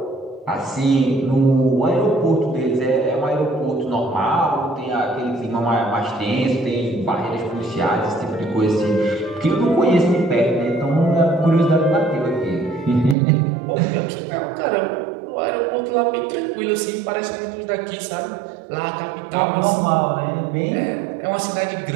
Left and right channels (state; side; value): drops out; left; at 13.2 s